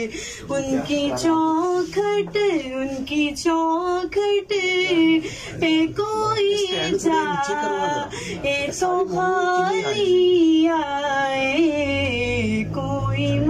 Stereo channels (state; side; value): identical; both; correlation 1.00